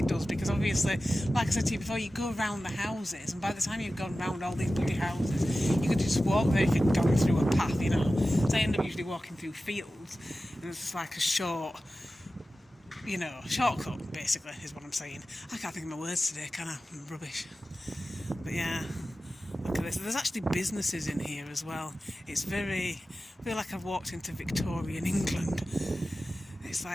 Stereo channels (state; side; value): normal; both; correlation 0.95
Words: does, because obviously, like I said to you before, you go around the houses, and by the time you've gone round all these bloody houses, you could just walk there if you'd gone through a path, you know. So I end up usually walking through fields, and it's just like a shortcut, basically, is what I'm saying. I can't think of my words today, can I? I'm rubbish. But yeah, look at this. There's actually businesses in here as well. It's I feel like I've walked into Victorian England. It's